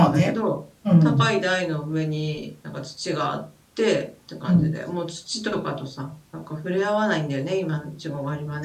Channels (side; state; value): both; identical; correlation 1.00